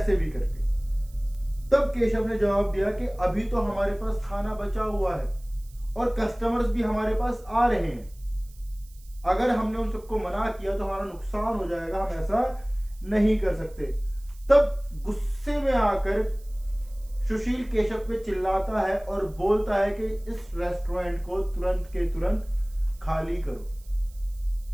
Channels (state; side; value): noise; right; hiss, 26 dB below the sound